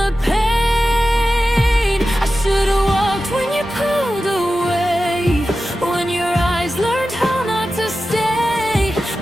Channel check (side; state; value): both; normal; correlation 0.94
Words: pain? I should've walked when you pulled away, when your eyes learned how not to stay.